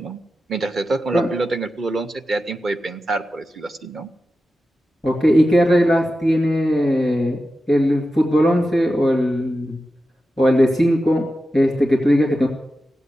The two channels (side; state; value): both; normal; correlation 0.92